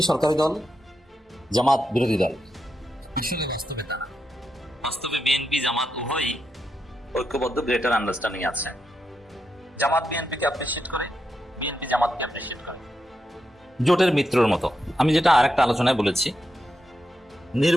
সরকারি দল, জামাত বিরোধী দল। আসলে বাস্তবে তা না। বাস্তবে বিএনপি জামাত উভয়ই ঐক্যবদ্ধ, গ্রেটার আন্ডারস্ট্যান্ডিং আছে। জামাত বিএনপিকে অ্যাপ্রিসিয়েট করে, বিএনপি জামাতকে অ্যাপ্রিসিয়েট করে, জোটের মিত্রর মতো। আমি যেটা আরেকটা আলোচনায় বলেছি,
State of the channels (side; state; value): both; normal; correlation 0.85